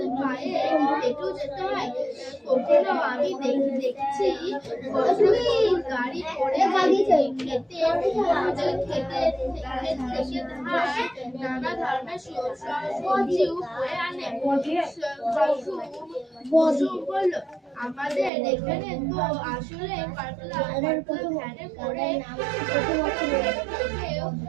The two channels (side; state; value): left; drops out; at 18.3 s